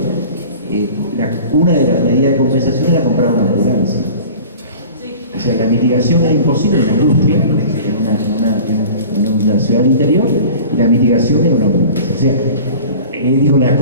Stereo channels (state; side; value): inverted; both; correlation -0.41